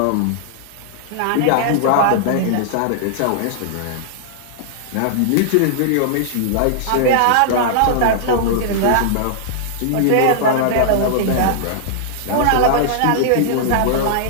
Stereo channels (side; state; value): both; different; correlation -0.01